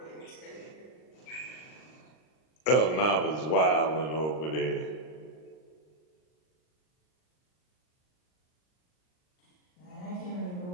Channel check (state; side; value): late; right; 39 ms